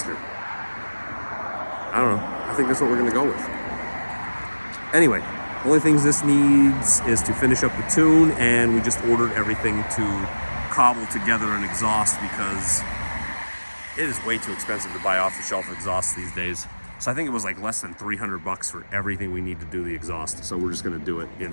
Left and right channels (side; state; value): both; inverted; correlation -1.00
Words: I don't know. I think that's what we're gonna go with. Anyway, only things this needs is to finish up the tune, and we just ordered everything to cobble together an exhaust because it is way too expensive to buy off-the-shelf exhausts these days. So I think it was like less than 300 bucks for everything we need to do the exhaust. So we're just gonna do it